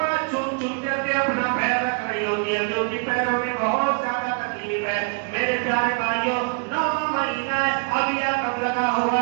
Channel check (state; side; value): quieter; left; 35.5 dB